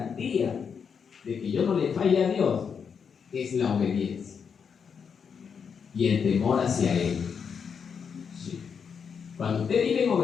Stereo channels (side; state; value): right; quieter; 6.6 dB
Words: de que yo no le falle a Dios? Es la obediencia y el temor hacia Él. Sí. Cuando usted vive en